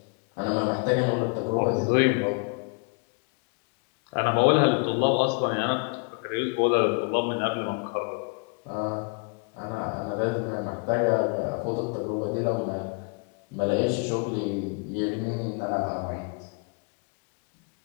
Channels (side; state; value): right; quieter; 36.4 dB